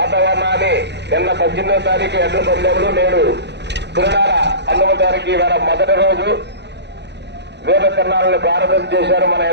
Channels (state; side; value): late; left; 0.50 ms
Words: నిన్న 18వ తారీఖు ఎడ్ల పందెములు, నేడు తిరునాళ్ళ 19వ తారీఖు ఇవాళ మొదటి రోజు వేద తిరునాళ్ళని ప్రారంభం చేశారు మన